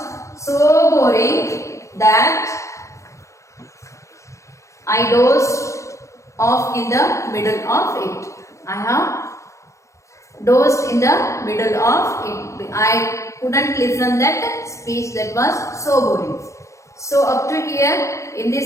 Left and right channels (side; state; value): right; late; 0.15 ms